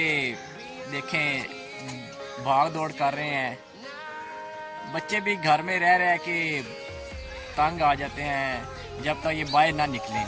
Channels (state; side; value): identical; both; correlation 1.00